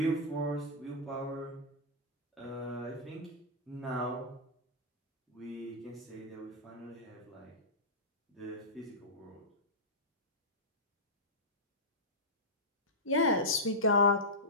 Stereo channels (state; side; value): normal; both; correlation -0.13